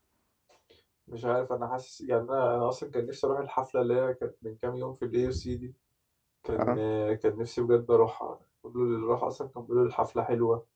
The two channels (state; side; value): identical; both; correlation 1.00